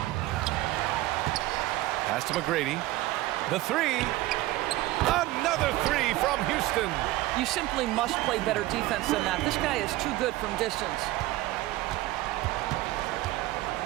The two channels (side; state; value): left; quieter; 17.4 dB